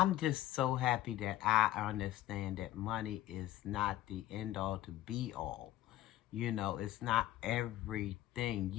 just so happy that I understand that money is not the end-all to be-all. It's not everything.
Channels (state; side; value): quieter; right; 14.6 dB